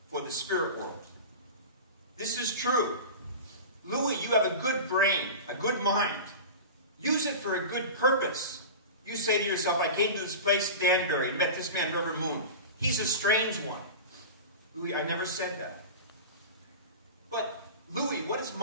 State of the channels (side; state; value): both; inverted; correlation -0.30